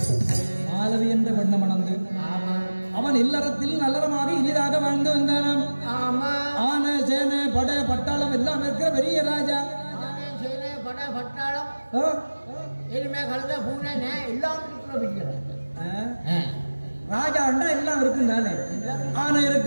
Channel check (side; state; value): both; inverted; correlation -1.00